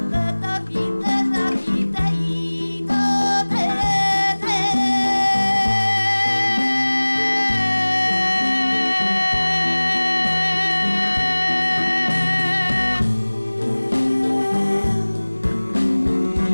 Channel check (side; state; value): both; inverted; correlation -1.00